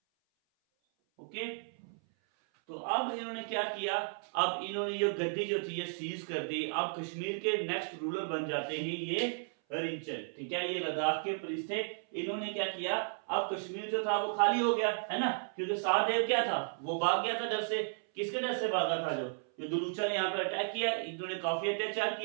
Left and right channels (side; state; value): left; silent; 55 dB below the other